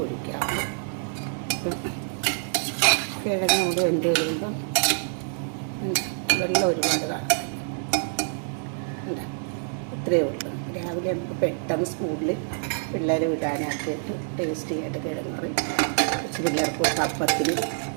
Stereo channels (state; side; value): silent; left; digital silence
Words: ഒഴിക്കാവൂ. കിഴങ്ങ് കൂടെ വെന്ത് കഴിയുമ്പം വെള്ളം ഒരുപാട് കാണും. ഇത്രയേ ഉള്ളൂ. രാവിലെ നമുക്ക് പെട്ടെന്ന് സ്കൂളിൽ പിള്ളേർ വിടാനാക്കിയിട്ട് ടേസ്റ്റി ആയിട്ട് കിഴങ്ങ് കറി കുറച്ച് പിള്ളേർക്ക് അപ്പത്തിനും